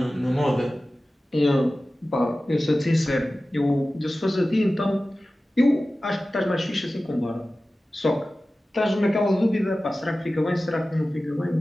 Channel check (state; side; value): normal; both; correlation 0.96